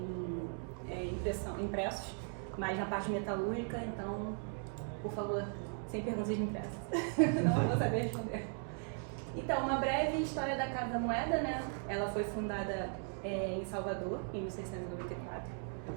impressos, mas na parte metalúrgica, então, por favor, sem perguntas impressas, não vou saber responder. Então, uma breve história da Casa da Moeda, né? Ela foi fundada em Salvador, em 1694.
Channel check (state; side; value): silent; left; 53 dB below the other